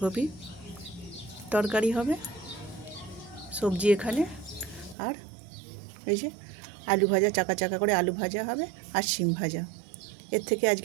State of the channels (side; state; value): left; drops out; at 5.0 s